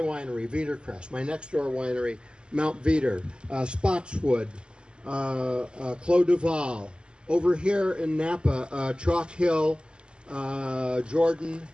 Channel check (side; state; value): left; late; 0.050 ms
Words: Veedercrest, my next door winery, Mount Veeder, Spotswood, Clos Duval. Over here in Napa, Chalk Hill, Jordan,